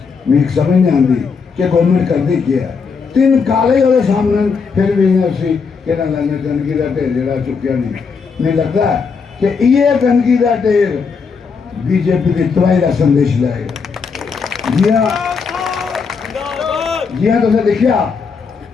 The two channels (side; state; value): right; quieter; 5.4 dB